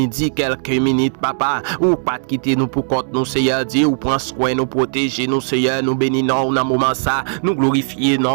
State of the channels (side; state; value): left; silent; digital silence